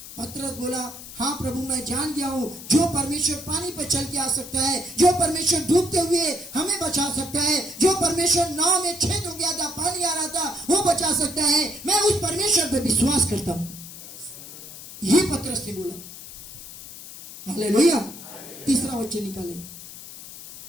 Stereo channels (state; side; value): noise; left; hiss, 14 dB below the sound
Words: पतरस बोला हाँ प्रभु मैं जान गया हूँ, जो परमेश्वर पानी पर चल के आ सकता है, जो परमेश्वर डूबते हुए हमें बचा सकता है, जो परमेश्वर नाव में छेद हो गया था, पानी आ रहा था, वो बचा सकता है, मैं उस परमेश्वर पर विश्वास करता हूँ। ये पतरस ने बोला। हालेलुया। तीसरा वचन निकाले,